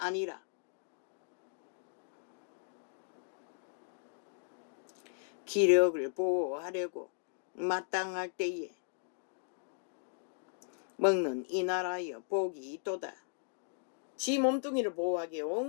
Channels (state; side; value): silent; right; digital silence